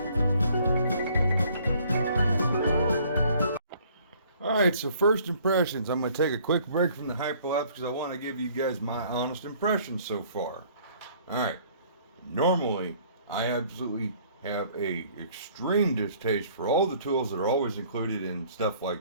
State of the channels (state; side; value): inverted; both; correlation -0.58